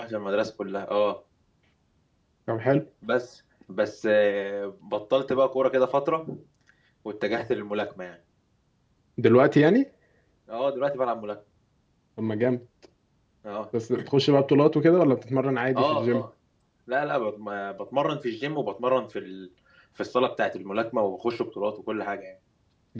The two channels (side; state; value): both; identical; correlation 1.00